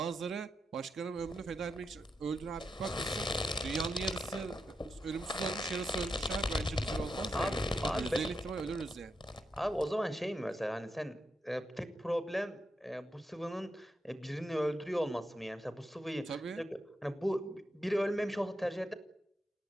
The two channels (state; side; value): normal; both; correlation 0.85